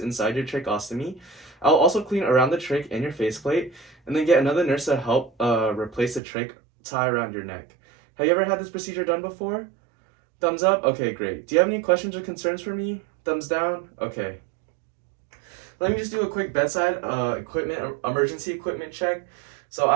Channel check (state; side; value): drops out; left; at 6.2 s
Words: inside your tracheostomy. I'll also clean around the trach and your faceplate, and then get another nurse to help replace the trach tie around your neck. Have you ever had this procedure done before? Thumbs up? Okay, great. Do you have any questions or concerns for me? Thumbs down? Okay. Let me just do a quick bedside emergency equipment check. So